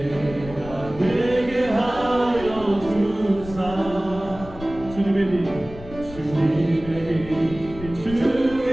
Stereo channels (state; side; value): noise; left; rumble, 14 dB below the sound